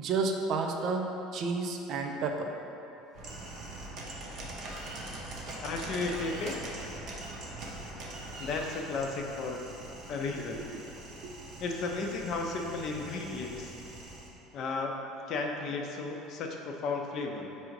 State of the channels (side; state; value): both; normal; correlation 0.44